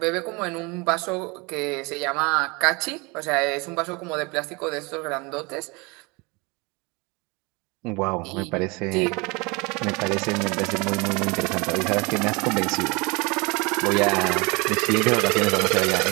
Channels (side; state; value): left; quieter; 27.4 dB